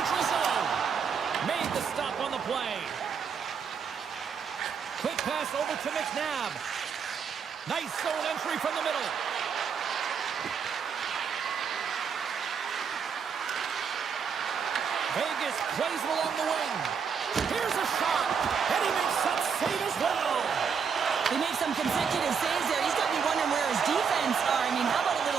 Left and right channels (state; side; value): quieter; left; 6.5 dB